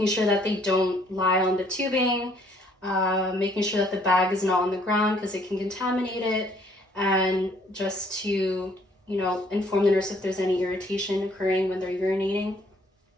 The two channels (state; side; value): normal; both; correlation 0.63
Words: sure that they don't lie on the tubing, making sure that the bag is not on the ground because it can contaminate it, and just to, inform the nurse if there's any irritation occurring when they're urinating.